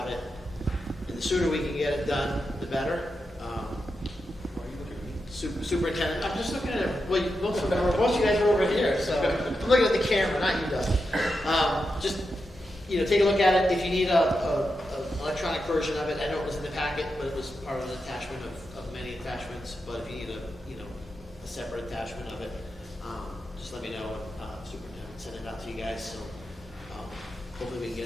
it. And the sooner we can get it done, the better. Superintendent, I'm just looking at it. Well, most of you guys are over here, so I'm looking at the camera, not you, Doug. Just take a look at it. If you need a electronic version of it, I know it was in the packet, but it was part of an attachment of many attachments. But if you need a separate attachment of it, just let me know. Superintendent send it out to you guys. So hopefully we can get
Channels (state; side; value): normal; both; correlation 0.88